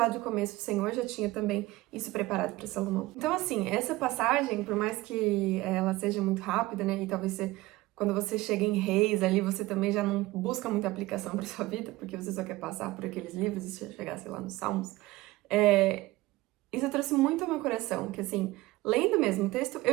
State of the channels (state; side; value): quieter; left; 19.2 dB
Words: do começo, o Senhor já tinha também isso preparado para Salomão. Então, assim, essa passagem, por mais que ela seja muito rápida, né? E talvez quando você chega em Reis ali, você também já não busca muita aplicação para sua vida, porque você só quer passar por aqueles livros e chegar, sei lá, nos Salmos. Isso trouxe muito ao meu coração, que assim, lendo mesmo o texto,